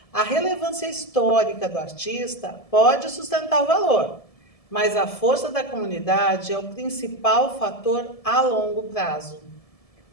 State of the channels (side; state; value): right; late; 1.7 ms